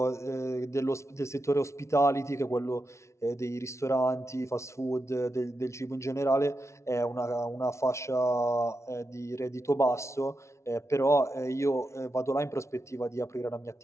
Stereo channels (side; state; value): right; late; 0.13 ms